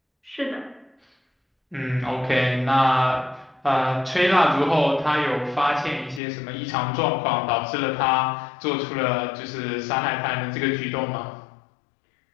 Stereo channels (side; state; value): right; drops out; at 6.2 s